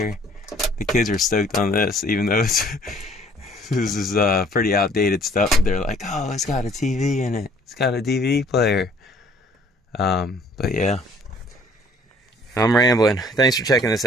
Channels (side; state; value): both; normal; correlation 0.58